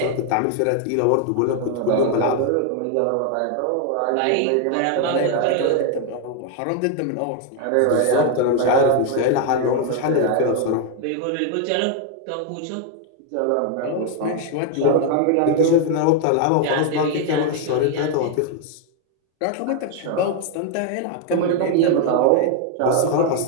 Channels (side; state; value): both; different; correlation 0.00